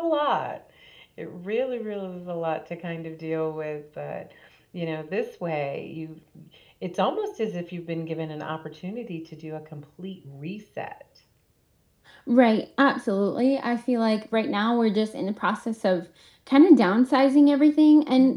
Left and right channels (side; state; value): both; identical; correlation 1.00